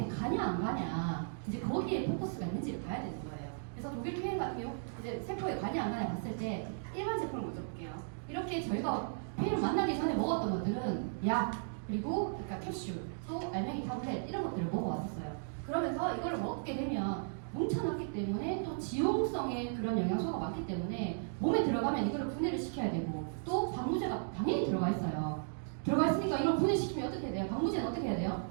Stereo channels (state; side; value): silent; left; digital silence